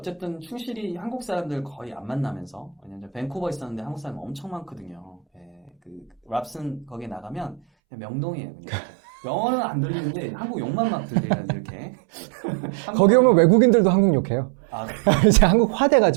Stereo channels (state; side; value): drops out; left; at 7.6 s